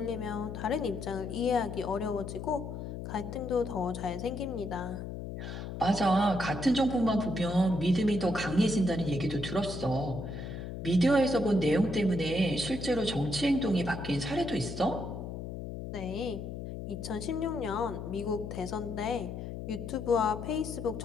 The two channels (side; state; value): left; noise; hum, 7 dB below the sound